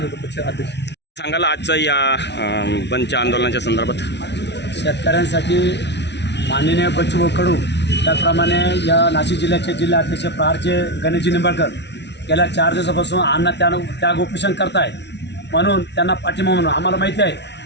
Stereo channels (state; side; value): late; right; 0.50 ms